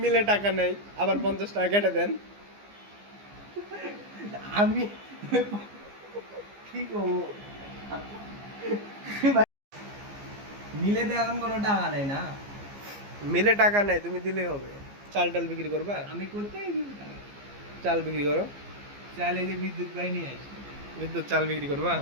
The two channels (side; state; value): left; late; 15 ms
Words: মিলে টাকা নেই, আবার 50 টাকা কেটে দেন। আমি কি করবো, মিলে তো এখন কোনো টাকা নেই না, মিলে টাকা নেই, তুমি দিলেই হবে। চাল টাল বিক্রি করবা? আমি কোথায় দিব টাকা? চাল বিক্রি করো, চাইলে যে বিদ্যুৎ পাই নিয়ে আসি। বিদ্যুৎ চাল বিক্রি করবা?